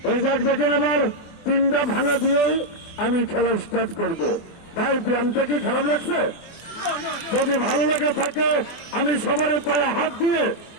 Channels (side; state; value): right; late; 24 ms